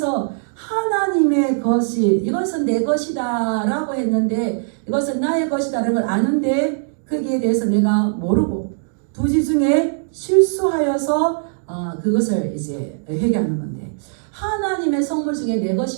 하나님의 것이 이것은 내 것이다 라고 했는데 이것은 나의 것이다라는 걸 아는데 거기에 대해서 내가 모르고 부지 중에 실수하여서 그것을 이제 회개하는 건데 하나님의 성물 중에 내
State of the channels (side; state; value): left; silent; digital silence